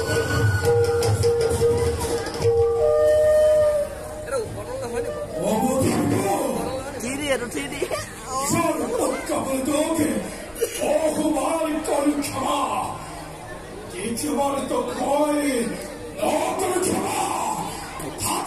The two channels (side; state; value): both; identical; correlation 1.00